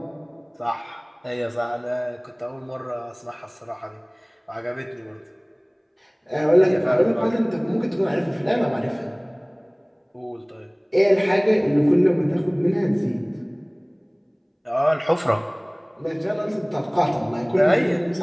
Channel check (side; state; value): both; identical; correlation 1.00